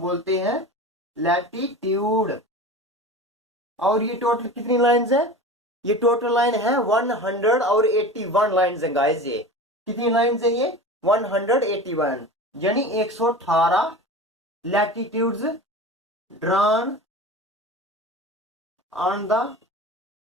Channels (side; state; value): both; normal; correlation 0.33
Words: हैं लैटिट्यूड। और ये टोटल कितनी लाइंस है? ये टोटल लाइन है 181 लाइंस है गाइस। ये कितनी लाइंस है? ये 181, यानी 118 latitudes drawn on the